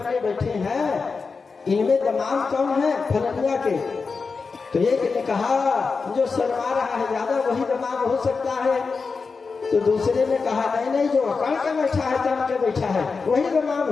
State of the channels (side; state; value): right; quieter; 4.7 dB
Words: बैठे हैं इनमें दामाद कौन है? फलनिया के। तो एक ने कहा जो शर्मा रहा है ज्यादा वही दामाद हो सकता है। तो दूसरे ने कहा नहीं जो अकड़ के बैठा है, तन के बैठा है, वही दामाद